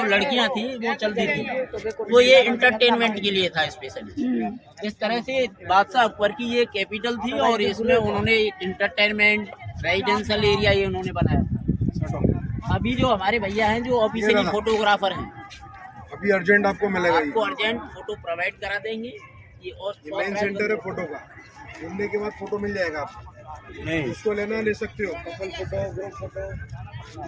लड़कियाँ थी वो चलती थी। तो ये इंटरटेनमेंट के लिए था स्पेशली। इस तरह से बादशाह अकबर की ये कैपिटल थी और इसमें उन्होंने इंटरटेनमेंट रेजिडेंशियल एरिया ये उन्होंने बनाया था। अभी जो हमारे भैया हैं जो ऑफिशियली फोटोग्राफर हैं, अभी अर्जेंट आपको मिलेगा। आपको अर्जेंट फोटो प्रोवाइड करा देंगे। ये और मेन सेंटर है फोटो का, घूमने के बाद फोटो मिल जाएगा आपको। नहीं इसको लेना ले सकते हो, couple photo, group photo,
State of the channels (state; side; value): identical; both; correlation 1.00